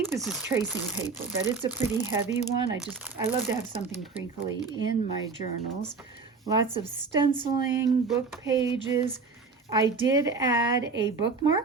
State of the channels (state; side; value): quieter; left; 4.6 dB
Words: this is tracing paper, but it's a pretty heavy one. I love to have something crinkly in my journals. Lots of stenciling, book pages. I did add a